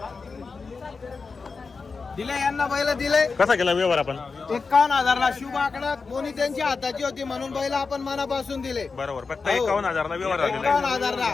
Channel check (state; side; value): quieter; right; 4.6 dB